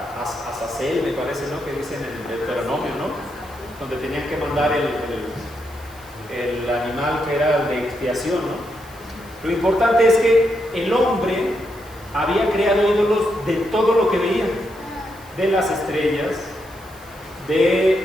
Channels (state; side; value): noise; right; hiss, 23 dB below the sound